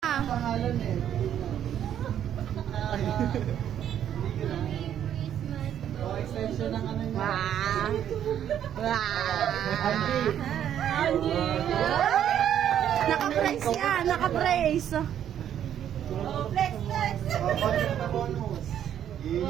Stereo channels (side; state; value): left; quieter; 10.1 dB